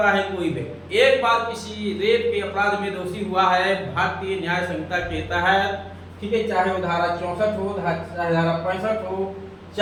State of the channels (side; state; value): both; identical; correlation 1.00